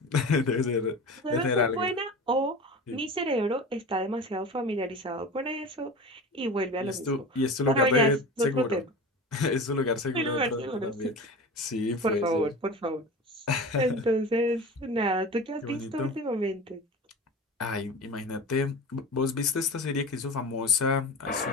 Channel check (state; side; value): normal; both; correlation 0.32